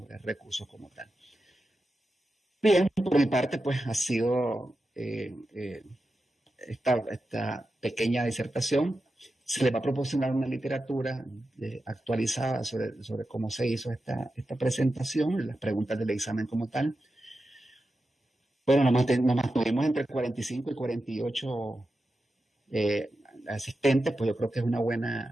recursos como tal. Bien, por mi parte, pues ha sido esta pequeña disertación. Se le va a proporcionar una literatura actualizada sobre cómo se hizo esta presentación, las preguntas del examen como tal. Bueno, nos mantuvimos entre 45 y 48 asistentes, pues yo creo que es una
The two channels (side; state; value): both; normal; correlation 0.91